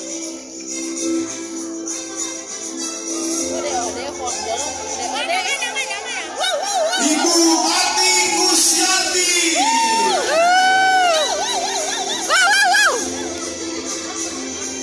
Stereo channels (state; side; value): identical; both; correlation 1.00